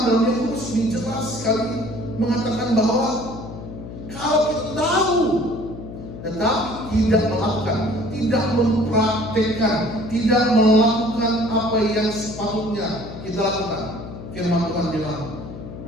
dalam Yakobus ini jelas sekali mengatakan bahwa kalau kita tahu tetapi tidak melakukan, tidak mempraktekkan, tidak melakukan apa yang sepatutnya kita lakukan, firman Tuhan bilang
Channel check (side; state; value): left; noise; hum, 11 dB below the sound